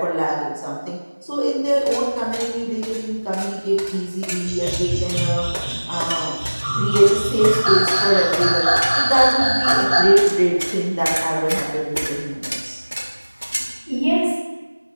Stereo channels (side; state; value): both; inverted; correlation -1.00